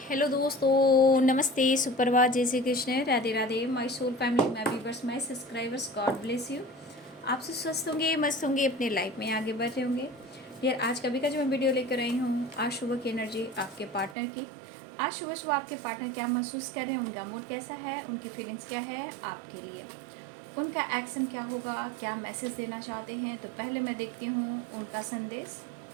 हेलो दोस्तों, नमस्ते, सुप्रभात, जय Shri Krishna, Radhe Radhe. My soul family, my viewers, my subscribers, God bless you. आप सब स्वस्थ होंगे, मस्त होंगे, अपने लाइफ में आगे बढ़ रहे होंगे। यार आज कभी का जो मैं वीडियो लेकर आई हूँ, आज सुबह की एनर्जी आपके पार्टनर की। आज सुबह सुबह आपके पार्टनर क्या महसूस कर रहे हैं, उनका मूड कैसा है, उनकी फीलिंग्स क्या है आपके लिए, उनका एक्शन क्या होगा, क्या मैसेज देना चाहते हैं। तो पहले मैं देखती हूँ उनका संदेश।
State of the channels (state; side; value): drops out; left; at 14.2 s